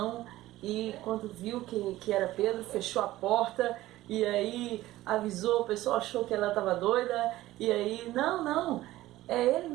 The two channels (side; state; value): left; quieter; 16.1 dB